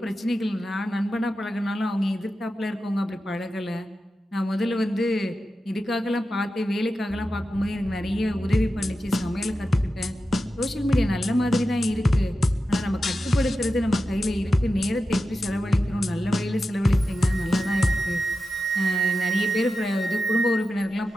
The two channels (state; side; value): normal; both; correlation 0.91